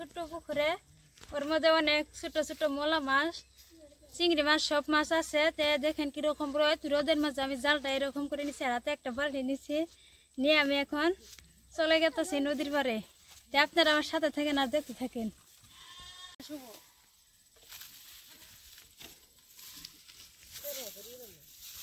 পুকুরে। ওর মধ্যে অনেক ছোট ছোট মোলা মাছ, চিংড়ি মাছ, সব মাছ আছে। তে দেখেন কিরকম রোদের মাঝে আমি জালটা এরকম করে নিচ্ছি, হাতে একটা বালতি নিচ্ছি, নিয়ে আমি এখন চলে গেতেছি নদীর পাড়ে। তে আপনারা আমার সাথে থাকেন আর দেখতে থাকেন।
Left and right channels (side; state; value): both; identical; correlation 1.00